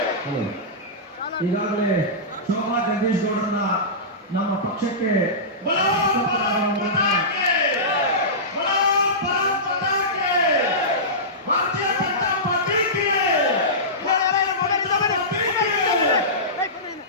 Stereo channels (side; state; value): both; normal; correlation -0.18